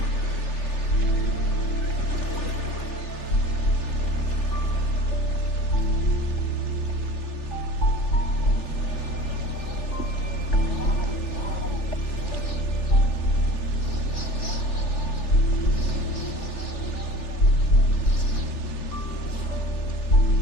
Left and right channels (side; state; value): right; late; 3.4 ms